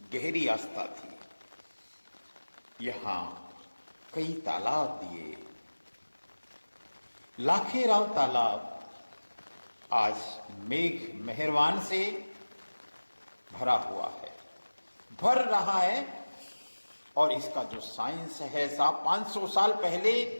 गहरी आस्था थी। यहां कई तालाब दिए। लाखेराव तालाब आज मेघ मेहरबान से भरा हुआ है, भर रहा है। और इसका जो साइंस है साहब, 500 साल पहले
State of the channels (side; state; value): both; inverted; correlation -1.00